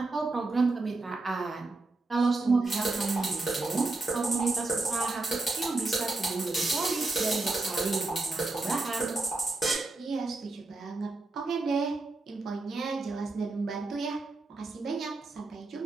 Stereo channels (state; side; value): quieter; left; 3.3 dB